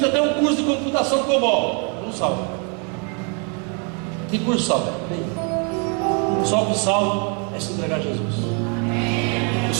até um curso de computação COBOL, não salva. Que curso salva? Só o que salva é se entregar a Jesus. Eu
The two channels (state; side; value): quieter; left; 36.9 dB